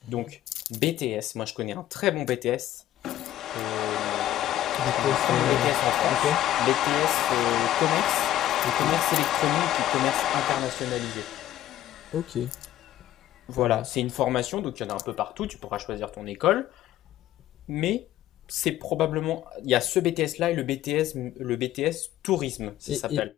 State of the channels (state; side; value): quieter; right; 13.2 dB